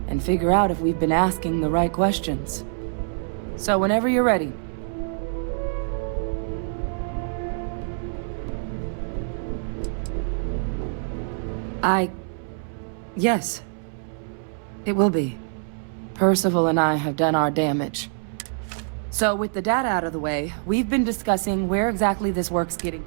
and figure out if we've been asking the right questions. So whenever you're ready. Yes. It will be. Percival and I have done our damage. So with the data out of the way, we've been discussing where exactly this work's getting.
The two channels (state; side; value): silent; left; 62 dB below the other